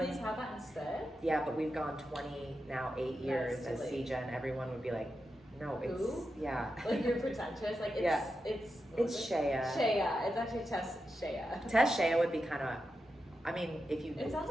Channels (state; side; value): normal; both; correlation 0.89